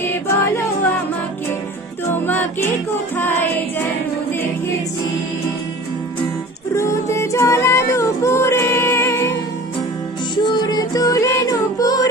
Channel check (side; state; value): both; normal; correlation 0.41